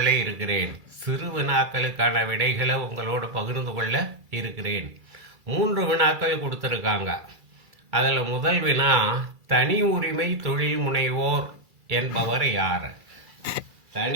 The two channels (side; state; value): left; late; 2.3 ms